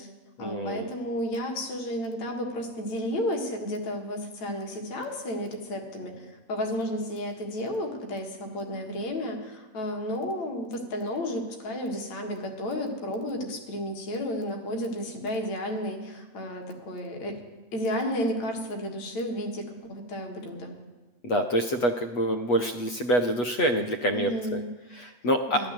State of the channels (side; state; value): right; late; 8.2 ms